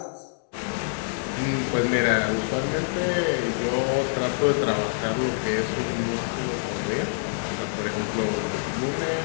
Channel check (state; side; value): silent; right; digital silence